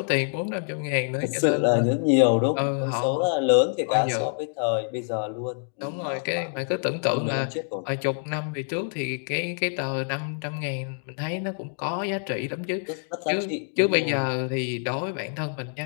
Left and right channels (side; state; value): right; silent; 61 dB below the other